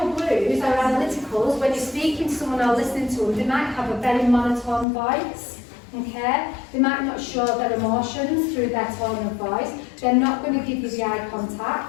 blues, our analyticals, when you're speaking to someone or listening to them, they might have a very monotone voice. Okay? They might not show their emotions through their tone of voice. They're not going to give you the eye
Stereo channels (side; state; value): right; drops out; at 4.9 s